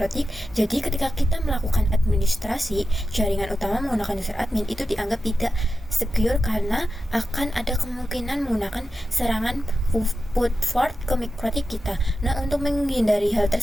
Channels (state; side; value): normal; both; correlation 0.91